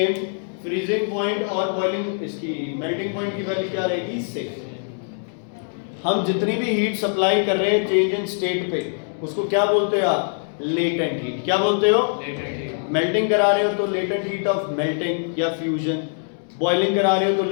फ्रीजिंग पॉइंट और बॉइलिंग इसकी मेल्टिंग पॉइंट की वैल्यू क्या रहेगी, सेम। हम जितनी भी हीट सप्लाई कर रहे हैं चेंज इन स्टेट पे, उसको क्या बोलते हो आप, लेटेंट हीट। क्या बोलते हो, लेटेंट हीट। मेल्टिंग करा रहे हो तो लेटेंट हीट ऑफ मेल्टिंग या फ्यूजन, बॉइलिंग करा रहे हो तो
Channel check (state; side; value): silent; right; digital silence